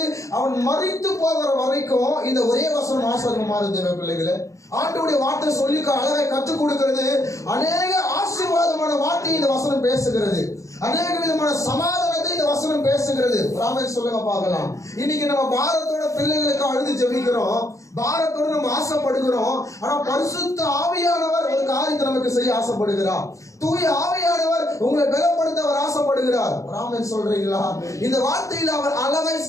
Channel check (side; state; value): right; late; 0.15 ms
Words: அவன் மரித்து போகிற வரைக்கும் இந்த ஒரே வசனம் ஆசீர்வாதமா இருந்தது. பிள்ளைகளை ஆண்டவருடைய வார்த்தை சொல்லி அழகை கற்றுக் கொடுக்கிறது. அநேக ஆசீர்வாதமான வார்த்தை இந்த வசனம் பேசுகிறது. அநேக விதமான சமாதானத்தை இந்த வசனம் பேசுகிறது. ராமன் சொல்லுங்க பார்க்கலாம். இன்னைக்கு நம்ம பாரத்தோட பிள்ளைகளுக்கு அழுது ஜெபிக்கிறோம், பாரத்தோட நம்ம ஆசைப்படுகிறோம். ஆனா பரிசுத்த ஆவியானவர் ஒரு காரியத்தை நமக்கு செய்ய ஆசைப்படுகிறார். தூய ஆவியானவர் உங்களை பலப்படுத்த அவர் ஆசைப்படுகிறார். ராமன் சொல்றீங்களா? இந்த வார்த்தையில் அவர் அழகை